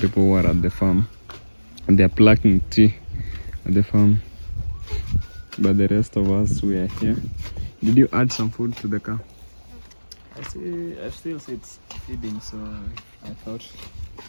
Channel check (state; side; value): inverted; both; correlation -1.00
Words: who are at the farm. And they're plucking tea at the farm. But the rest of us, we are here. Did you add some food to the cow? I still see it's feeding, so I thought